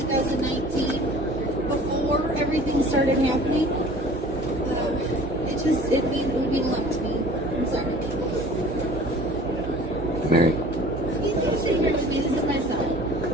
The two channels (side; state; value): both; normal; correlation 0.46